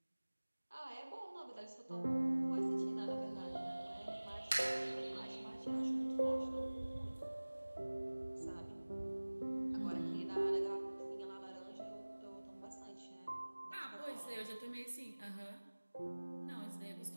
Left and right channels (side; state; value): both; inverted; correlation -1.00